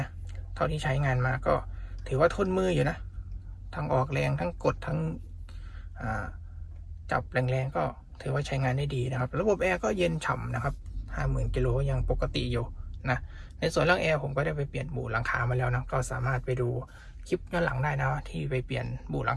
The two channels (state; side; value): identical; both; correlation 1.00